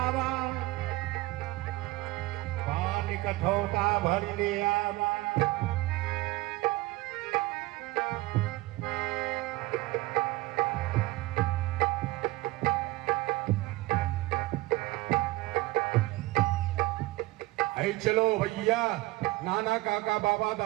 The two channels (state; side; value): quieter; left; 19.7 dB